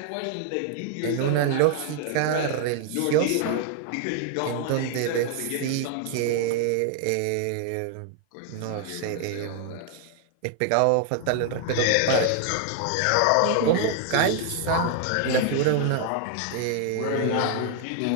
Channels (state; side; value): different; both; correlation 0.00